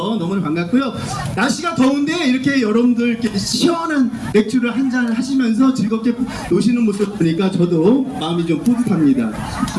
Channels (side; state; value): both; identical; correlation 1.00